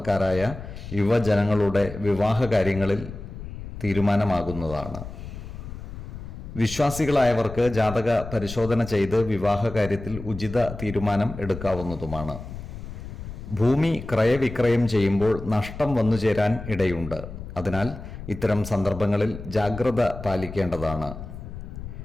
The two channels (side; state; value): left; noise; rumble, 11 dB below the sound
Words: യുവജനങ്ങളുടെ വിവാഹ കാര്യങ്ങളിൽ തീരുമാനമാകുന്നതാണ്. വിശ്വാസികളായവർക്ക് ജാതക പരിശോധന ചെയ്ത് വിവാഹ കാര്യത്തിൽ ഉചിത തീരുമാനം എടുക്കാവുന്നതുമാണ്. ഭൂമി ക്രയവിക്രയം ചെയ്യുമ്പോൾ നഷ്ടം വന്നു ചേരാൻ ഇടയുണ്ട്. അതിനാൽ ഇത്തരം സന്ദർഭങ്ങളിൽ ജാഗ്രത പാലിക്കേണ്ടതാണ്.